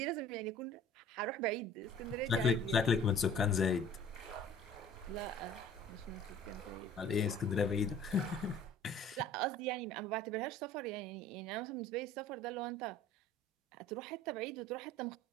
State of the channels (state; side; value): normal; both; correlation 0.49